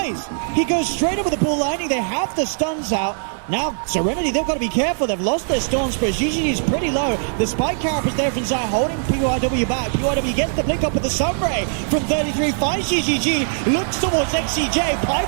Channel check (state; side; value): silent; left; digital silence